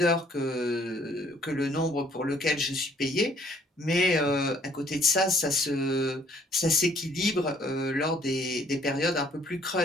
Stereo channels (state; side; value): normal; both; correlation 0.61